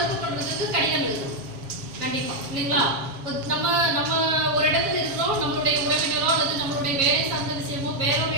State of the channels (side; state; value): left; late; 7.3 ms